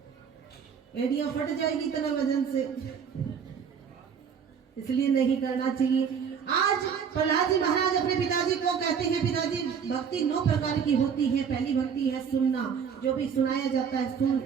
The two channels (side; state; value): left; quieter; 6.9 dB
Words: एड़ियां फट जाएगी इतना वजन से, इसलिए नहीं करना चाहिए। आज प्रहलाद जी महाराज अपने पिताजी को कहते हैं, पिताजी भक्ति 9 प्रकार की होती है। पहली भक्ति है सुनना, जो भी सुनाया जाता है सुन,